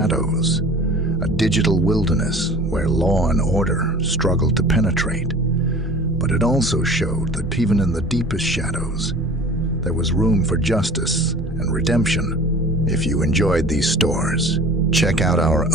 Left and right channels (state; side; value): normal; both; correlation 0.43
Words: a digital wilderness where law and order struggled to penetrate. But it also showed that even in the deepest shadows, there was room for justice and redemption. If you enjoyed these stories, check out our